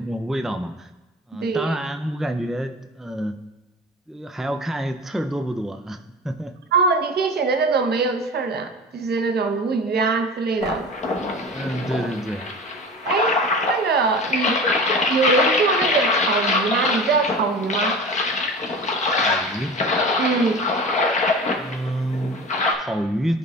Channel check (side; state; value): both; normal; correlation 0.35